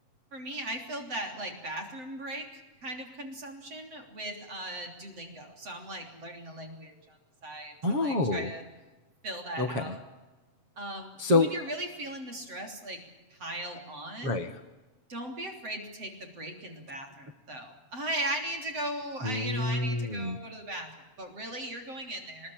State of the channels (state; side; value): late; left; 7.8 ms